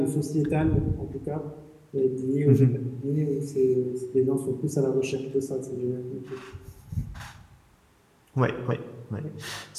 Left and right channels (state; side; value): identical; both; correlation 1.00